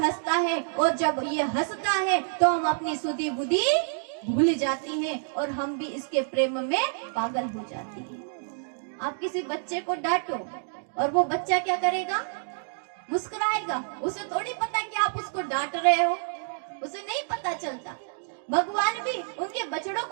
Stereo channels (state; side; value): silent; left; digital silence